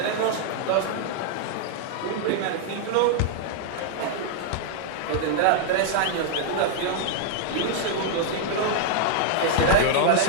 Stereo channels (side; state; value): both; different; correlation 0.00